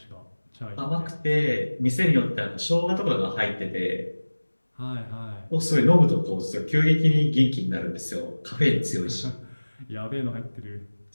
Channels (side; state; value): both; inverted; correlation -1.00